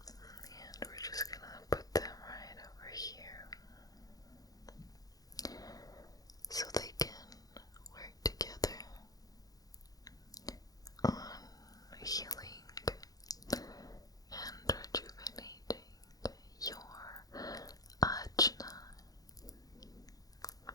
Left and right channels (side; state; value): right; late; 0.18 ms